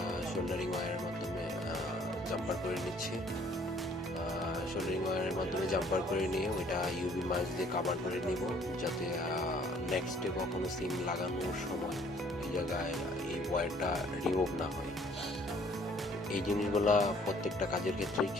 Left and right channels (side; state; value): both; normal; correlation 0.58